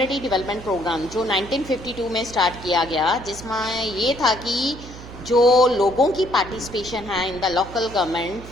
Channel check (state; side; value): noise; right; hum, 15 dB below the sound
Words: development programme जो 1952 में start किया गया, जिसमें ये था कि जो लोगों की पार्टिसिपेशन है in the local government